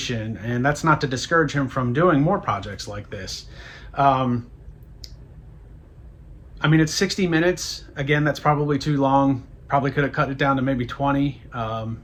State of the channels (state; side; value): identical; both; correlation 1.00